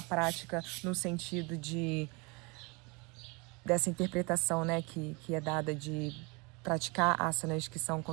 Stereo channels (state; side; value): quieter; left; 28.7 dB